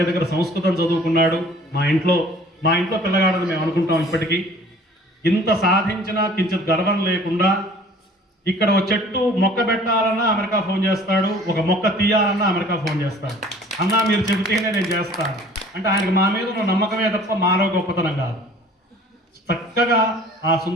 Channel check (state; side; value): normal; both; correlation 0.50